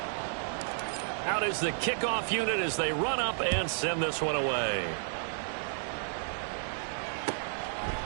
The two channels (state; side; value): silent; left; digital silence